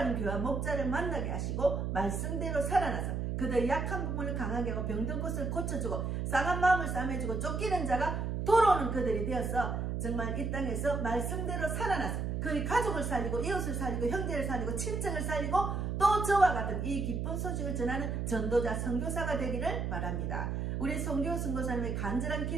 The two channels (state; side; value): noise; right; hum, 1 dB below the sound